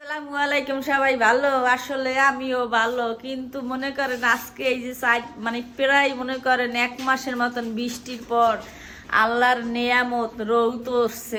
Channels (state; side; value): identical; both; correlation 1.00